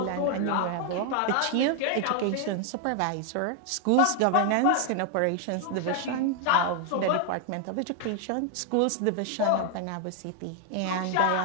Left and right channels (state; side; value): different; both; correlation 0.00